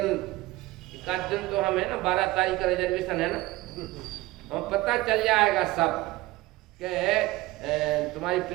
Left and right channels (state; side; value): quieter; left; 19.2 dB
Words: एक दिन तो हम है ना 12 तारीख का रिजर्वेशन है ना, हम पता चल जाएगा सब कि तुम्हारी